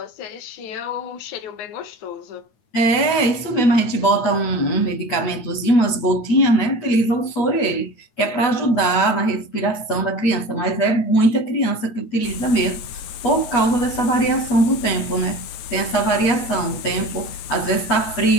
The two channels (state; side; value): late; right; 9.0 ms